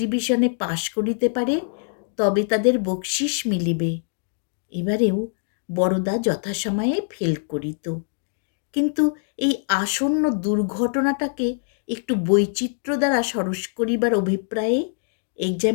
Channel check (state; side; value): silent; right; digital silence